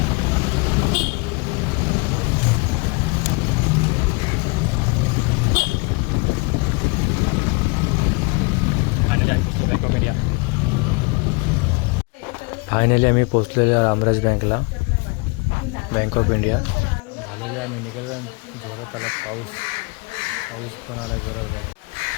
फायनली आम्ही पोचलेलो रामराज बँकला, बँक ऑफ इंडिया. झालेले आम्ही निघालो जोरात आला पाऊस पण आला जोरात बघा.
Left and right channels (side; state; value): right; quieter; 28.6 dB